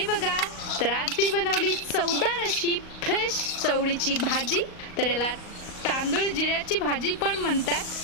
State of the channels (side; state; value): right; late; 38 ms